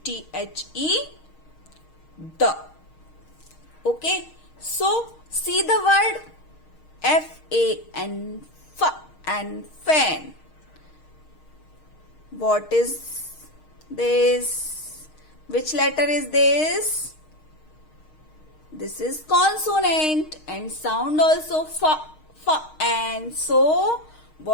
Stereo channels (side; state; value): right; late; 6.4 ms